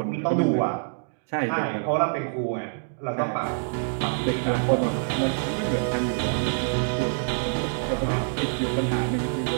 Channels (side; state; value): left; silent; digital silence